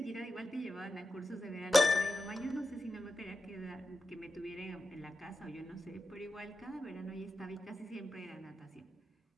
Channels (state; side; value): normal; both; correlation 0.90